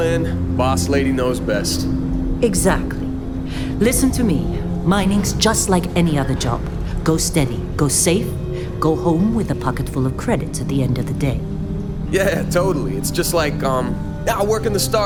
Boss lady knows best. Exactly. Listen to me. Mining's just like any other job. Go steady, go safe, go home with a pocket full of credits at the end of the day. Yeah, totally. It's just like, I work in the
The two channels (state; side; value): identical; both; correlation 1.00